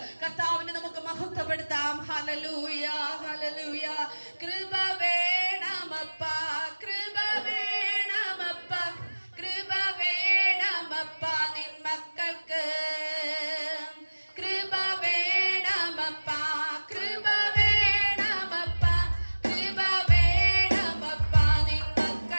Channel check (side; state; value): both; inverted; correlation -1.00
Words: കർത്താവിനെ നമുക്ക് മഹത്വപ്പെടുത്താം. Hallelujah hallelujah. കൃപ വേണമപ്പ, കൃപ വേണമപ്പ, കൃപ വേണമപ്പ നിൻ മക്കൾക്ക്. കൃപ വേണമപ്പ, കൃപ വേണമപ്പ, കൃപ വേണമപ്പ നിൻ